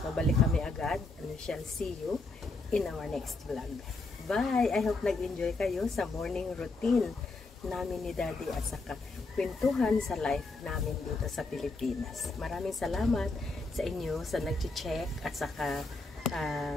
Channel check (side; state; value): right; quieter; 3.4 dB